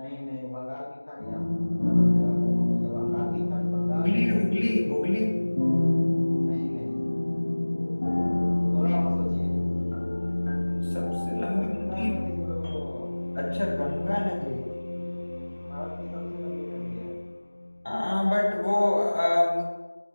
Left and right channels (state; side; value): inverted; both; correlation -1.00